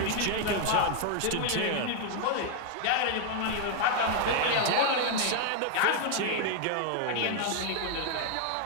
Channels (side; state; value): both; different; correlation 0.00